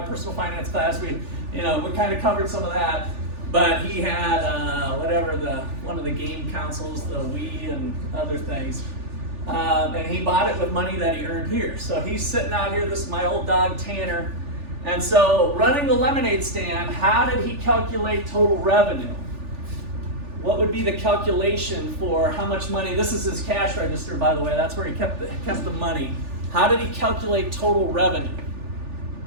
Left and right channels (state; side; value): late; left; 3.4 ms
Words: personal finance class, we kind of covered some of that. But he had one of the game consoles, the Wii and other things. And he bought it with money that he earned here. So he's sitting out here, this is my old dog Tanner. And so running the lemonade stand, how did he calculate total revenue? What would be the calculation for how much money? This is his cash register, by the way. That's where he kept the money. How did he calculate total revenue?